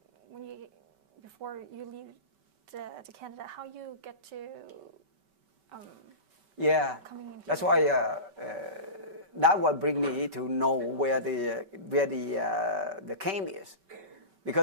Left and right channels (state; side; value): late; left; 5.2 ms